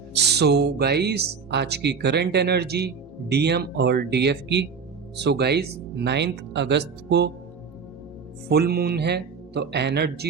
सो गाइस, आज की करंट एनर्जी डीएम और डीएफ की। सो गाइस, 9 अगस्त को फुल मून है, तो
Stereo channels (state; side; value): quieter; left; 5.9 dB